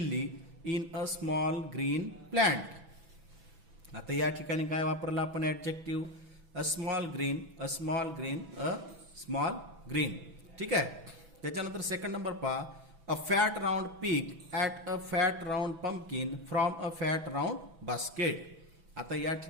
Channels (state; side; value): late; left; 6.0 ms